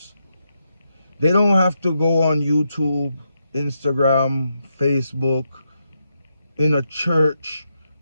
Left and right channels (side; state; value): both; inverted; correlation -0.83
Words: They don't have to go on YouTube, Instagram, Facebook, in a church,